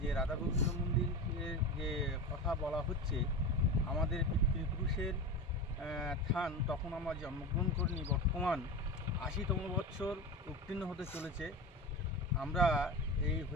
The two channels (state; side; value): normal; both; correlation 0.26